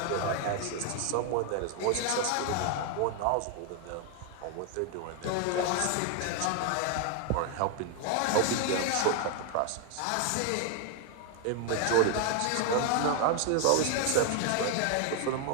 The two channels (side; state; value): both; different; correlation 0.00